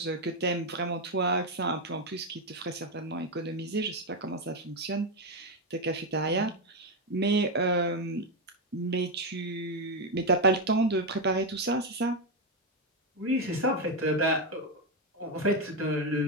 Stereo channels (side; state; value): both; normal; correlation 0.06